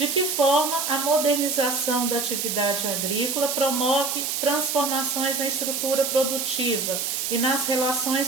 que forma a modernização da atividade agrícola promove transformações na estrutura produtiva e nas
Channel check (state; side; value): noise; right; hiss, 1 dB below the sound